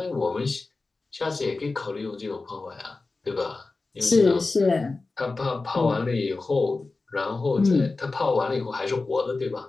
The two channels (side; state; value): right; quieter; 3.6 dB